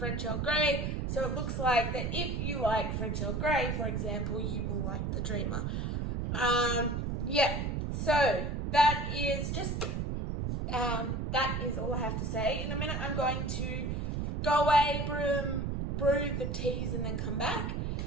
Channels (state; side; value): noise; right; rumble, 1 dB below the sound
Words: Earl Grey. So it looks like that if you like French Earl Grey, for example, you will like the Dreamer. So that is just, that is all I have to say. In a minute, I'm going to go away, brew the teas, and then come back